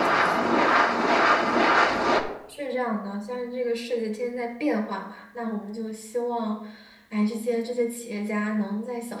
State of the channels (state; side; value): identical; both; correlation 1.00